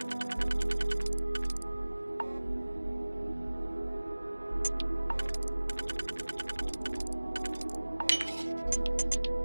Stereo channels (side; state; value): both; inverted; correlation -1.00